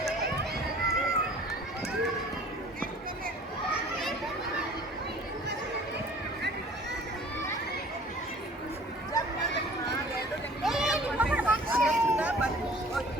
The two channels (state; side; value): normal; both; correlation 0.50